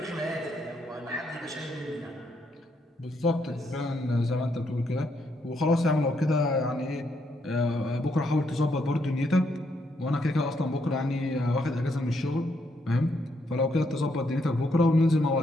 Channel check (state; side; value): normal; both; correlation 0.76